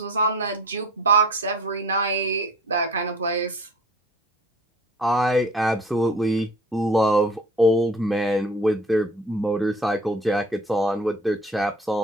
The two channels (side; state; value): both; normal; correlation 0.45